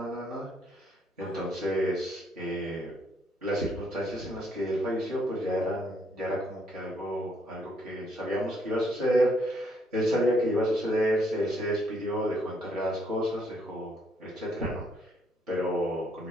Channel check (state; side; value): normal; both; correlation 0.70